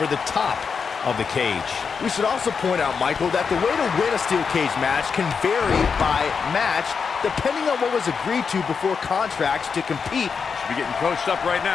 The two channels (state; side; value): quieter; right; 5.8 dB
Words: the top of the cage. We should also point out, Michael, that the way to win a steel cage match can vary by match, depending on what was agreed to before contracts to compete. Should be getting coached up right